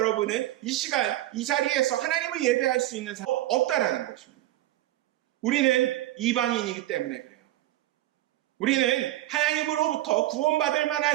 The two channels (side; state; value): left; quieter; 15.2 dB